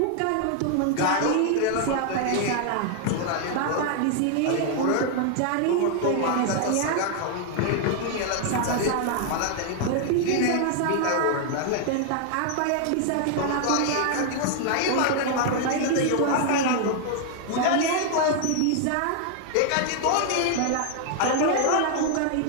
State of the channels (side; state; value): both; different; correlation 0.00